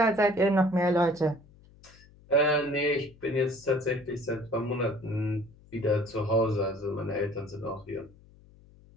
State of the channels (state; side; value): noise; left; hum, 25 dB below the sound